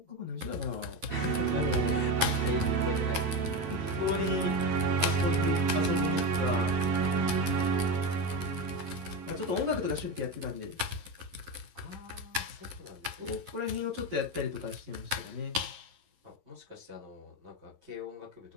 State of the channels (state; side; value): late; left; 11 ms